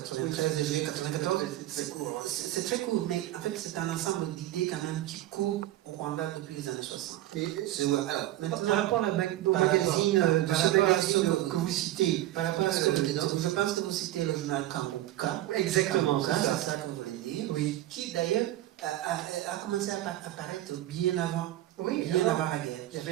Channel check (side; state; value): left; quieter; 14.6 dB